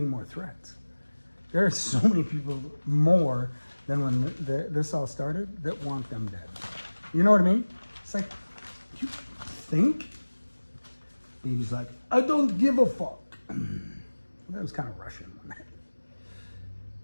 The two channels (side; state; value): both; inverted; correlation -1.00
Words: more threats. There are so many people more than when this all started that want them dead. You know what I mean? It's like, you think? He's like, I don't give a fuck. That was kind of Russian.